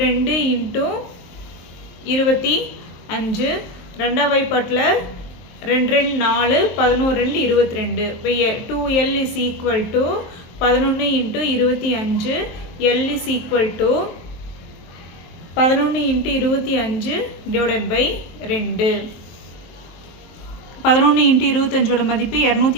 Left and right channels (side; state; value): right; late; 23 ms